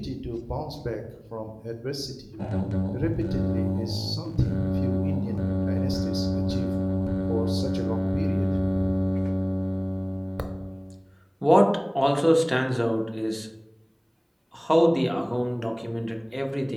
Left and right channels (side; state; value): both; identical; correlation 1.00